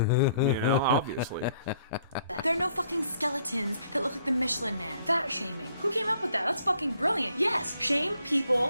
know, obviously. There are no fucking skeletons that look like the Michelin Man. Fat shaming. Who came up with that? That's fucking brilliant. Yes, shame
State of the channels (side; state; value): both; inverted; correlation -0.65